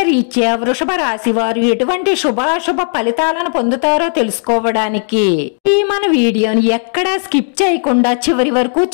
రీత్యా వృషభ రాశి వారు ఎటువంటి శుభాశుభ ఫలితాలను పొందుతారో తెలుసుకోవడానికి ఈ మన వీడియోని ఎక్కడా స్కిప్ చేయకుండా చివరి వరకు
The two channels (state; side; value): silent; right; digital silence